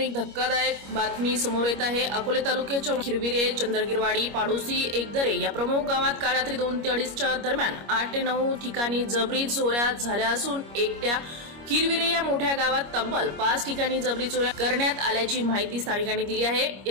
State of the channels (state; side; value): late; left; 25 ms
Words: धक्कादायक बातमी समोर येत आहे। अकोले तालुक्याच्या खिरविरे, चंद्रगिरवाडी, पाडोसी, एकदरे या प्रमुख गावात काल रात्री 2 ते 2:30च्या दरम्यान 8 ते 9 ठिकाणी जबरी चोऱ्या झाल्या असून एकट्या खिरविरे या मोठ्या गावात तब्बल 5 ठिकाणी जबरी चोऱ्या करण्यात आल्याची माहिती स्थानिकांनी दिली आहे।